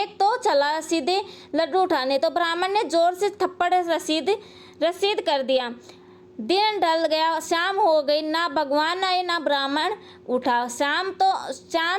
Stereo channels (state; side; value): identical; both; correlation 1.00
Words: तो चला सीधे लड्डू उठाने, तो ब्राह्मण ने जोर से थप्पड़ रसीद कर दिया। दिन ढल गया, शाम हो गई, ना भगवान आए ना ब्राह्मण उठा।